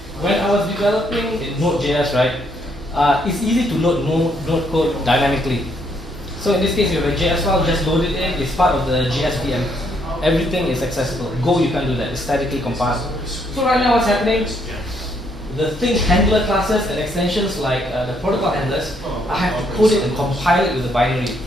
When I was developing in Node.js, right, it's easy to load node code dynamically. So in this case, you have a JS file, just load it in. It's part of the JSVM. Everything is accessible. Go, you can't do that. It's statically compiled. So right now, what's happening? The thing handler classes and extensions like the protocol handlers, I have to code it and compile it with a binary.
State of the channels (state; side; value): normal; both; correlation 0.71